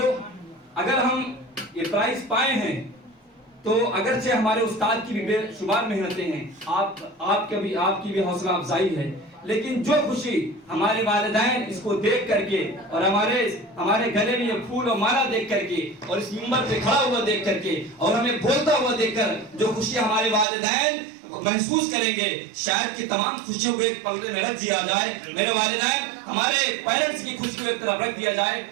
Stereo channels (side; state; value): left; drops out; at 20.5 s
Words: اگر ہم یہ پرائز پائے ہیں تو اگرچہ ہمارے استاد کی بھی بے شمار محنتیں ہیں، آپ کی بھی حوصلہ افزائی ہے، لیکن جو خوشی ہمارے والدین اس کو دیکھ کر کے اور ہمارے گلے میں یہ پھول اور مالا دیکھ کر کے اور اس منبر پہ کھڑا ہوا دیکھ کر کے اور ہمیں بولتا ہوا دیکھ کر جو خوشی ہمارے والدین محسوس کریں گے، شاید کہ تمام خوشیوں کو ایک پلڑے میں رکھ دیا جائے، میرے والدین ہمارے پیرنٹس کی خوشی کو ایک طرف رکھ دیا جائے